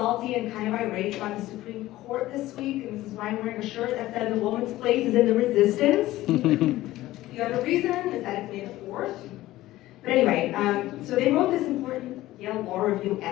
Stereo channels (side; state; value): right; quieter; 16.2 dB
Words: and kind of irate about the Supreme Court this week, and this is why I'm wearing a shirt that said the woman's place is in the resistance. The other reason is that it's May the 4th. But anyway, so they wrote this important Yale Law Review